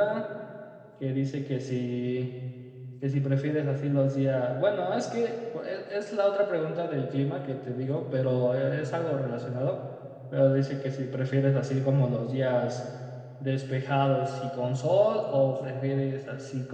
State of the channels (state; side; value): identical; both; correlation 1.00